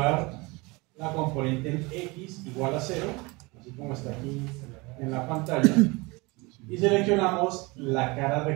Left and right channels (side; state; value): left; quieter; 25.2 dB